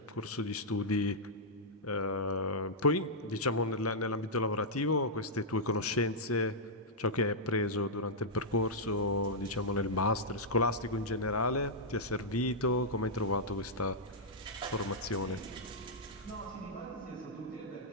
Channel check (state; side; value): normal; both; correlation -0.08